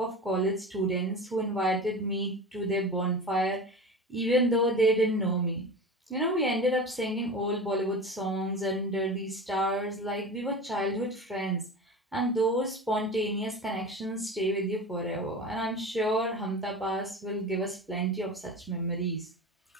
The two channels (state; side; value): normal; both; correlation 0.31